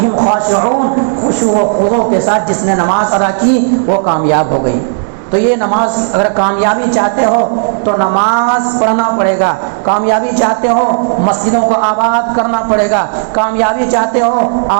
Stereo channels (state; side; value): silent; left; digital silence